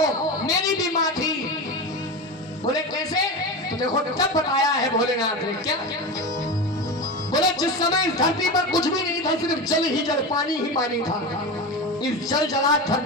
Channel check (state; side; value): normal; both; correlation 0.23